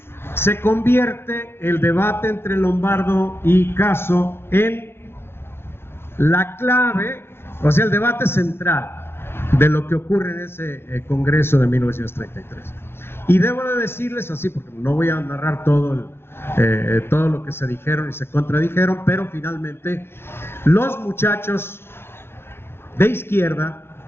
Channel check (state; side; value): late; right; 0.11 ms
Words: se convierte el debate entre Lombardo y Caso en la clave, o sea, el debate central de lo que ocurre en ese Congreso de 1933. Y debo de decirles así, porque no voy a narrar todo lo que se dijeron y se contradijeron, pero finalmente los muchachos de izquierda,